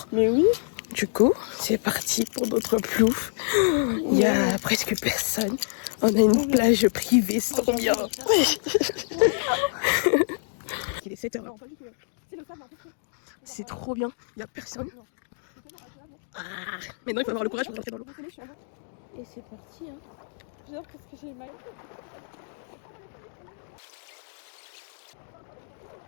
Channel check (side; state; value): right; silent; digital silence